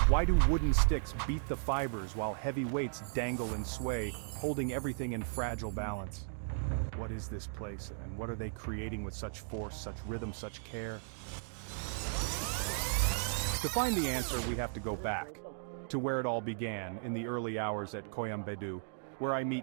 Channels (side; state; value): left; silent; digital silence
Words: Why do wooden sticks beat the fibers while heavy weights dangle and sway, holding everything in fragile balance? What is this place, and what are they creating with such force, such rhythm, such care? To find the answer, we have to go back to where it all began, in the early hours at Koyambedu, where I